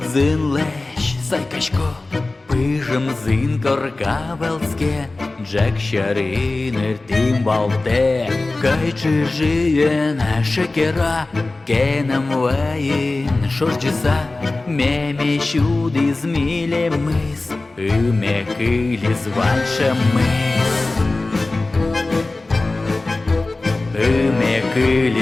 зин лещ сайкашко, пижем зин коркавелске, Джек шаринер тим балте, кайчи жиен шекера, кенем ваин шорджиса, меме щуди зміле мис, име килі званша мис. Име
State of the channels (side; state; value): right; quieter; 3.1 dB